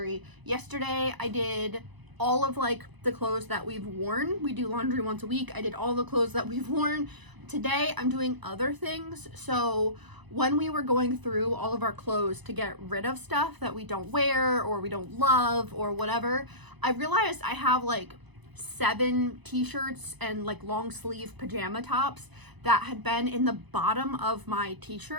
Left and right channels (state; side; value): late; left; 1.0 ms